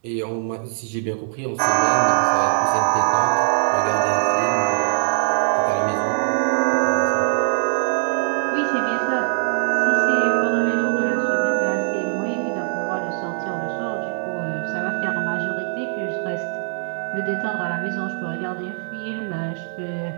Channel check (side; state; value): left; silent; 64 dB below the other